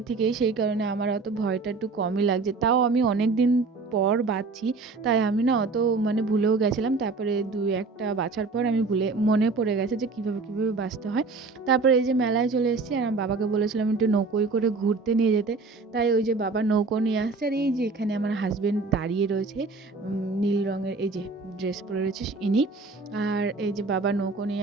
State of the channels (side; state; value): left; quieter; 4.1 dB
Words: থেকেই, সেই কারণে আমার অত ভয়টা একটু কমই লাগছে। তাও আমি অনেক দিন পর বাছছি, তাই আমি না অত ভুলেও গেছিলাম। তারপরে দুই একটা বাছার পর আমি মনে পড়ে গেছে যে কীভাবে কীভাবে বাছতে হয়। তারপরে এই যে মেলায় চলে এসেছি, আর আমার বাবাকে বলেছিলাম একটু নৌকোয় করে ঘুরতে নিয়ে যেতে। তাই ওই যে বাবা নৌকো নিয়ে আসছে, আর এই যে এখানে আমার হাজবেন্ড দাঁড়িয়ে রয়েছে, নীল রঙের এই যে ড্রেস পরে রয়েছে ইনি। আর এই যে বাবা নৌকো